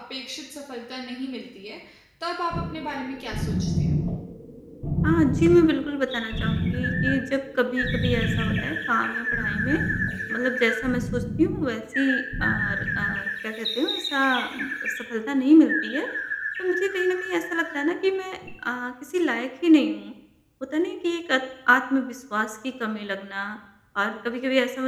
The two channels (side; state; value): both; identical; correlation 1.00